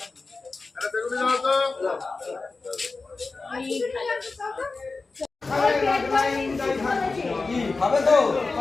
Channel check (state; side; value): quieter; right; 3.8 dB